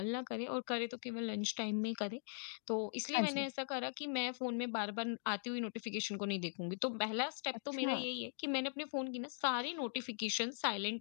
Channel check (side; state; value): right; silent; digital silence